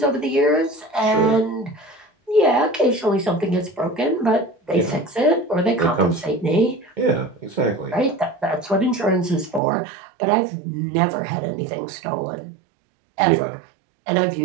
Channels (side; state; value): left; drops out; at 9.6 s